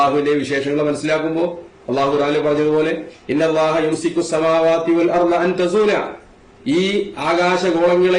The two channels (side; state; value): both; identical; correlation 1.00